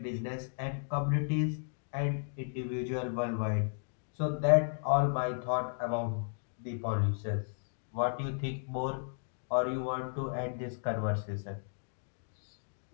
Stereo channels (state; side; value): silent; right; digital silence